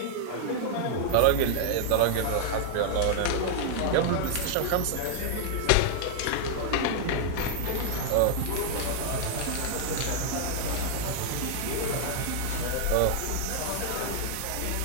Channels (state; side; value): different; both; correlation -0.01